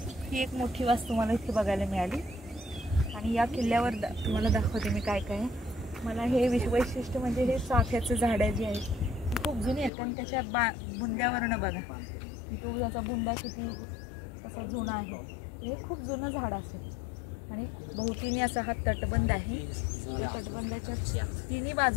ही एक मोठी वास्तू मला इथे बघायला मिळाली। आणि या किल्ल्यावर तुम्हाला दाखवते मी काय काय। मला हे वैशिष्ट्य म्हणजे हे चाफ्याचं झाड जे आहे खूप जुनी आहेत, कारण त्याच्या बुंद्यावरनं बघा तो त्याचा बुंदा किती असा जुना आहे। हे खूप जुनं झाड असेल। आणि भोवतीने असा हा तटबंद आहे। तटबंदाच्या तिन्ही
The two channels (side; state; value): right; drops out; at 9.9 s